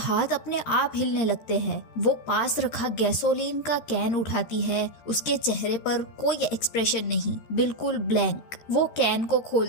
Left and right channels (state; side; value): late; right; 13 ms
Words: अपने आप हिलने लगते हैं। वो पास रखा गैसोलीन का कैन उठाती है। उसके चेहरे पर कोई एक्सप्रेशन नहीं, बिल्कुल ब्लैंक। वो कैन को